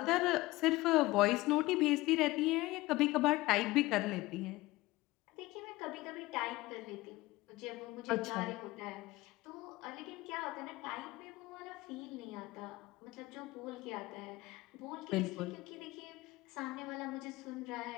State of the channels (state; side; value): quieter; right; 19.5 dB